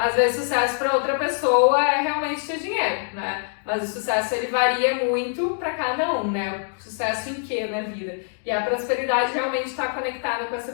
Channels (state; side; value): silent; right; 63 dB below the other